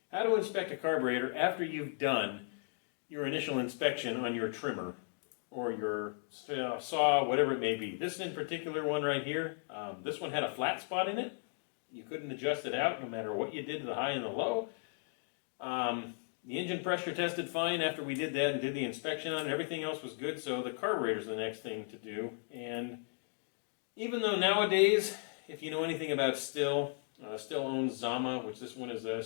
how to inspect a carburetor after you've done your initial inspection on your trimmer or your saw, whatever it may be. This in particular one right here, this one had a flat spot in it. You couldn't adjust it out no matter what you did to the high and the low. The engine pressure tested fine after we did that and did the inspection on it. Everything else was good, so the carburetor is the next thing to do. And even though nowadays, if you know anything about Stihl owns Zama, which this one is a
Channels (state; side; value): silent; right; 54 dB below the other